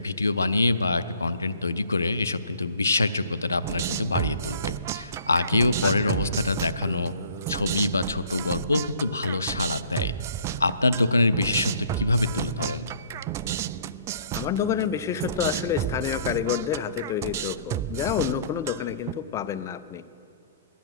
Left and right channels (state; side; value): inverted; both; correlation -0.55